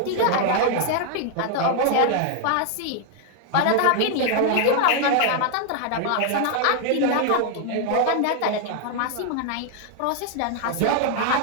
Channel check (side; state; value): both; different; correlation 0.00